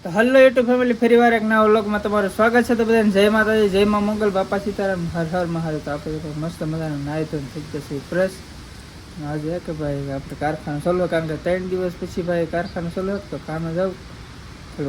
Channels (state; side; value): identical; both; correlation 1.00